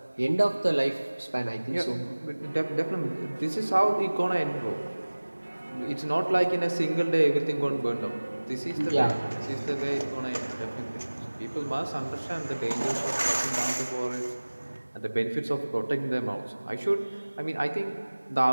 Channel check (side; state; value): both; inverted; correlation -1.00